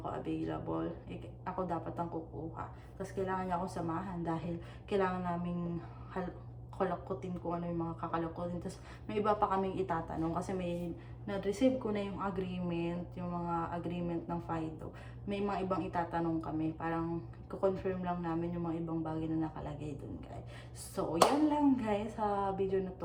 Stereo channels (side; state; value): both; identical; correlation 1.00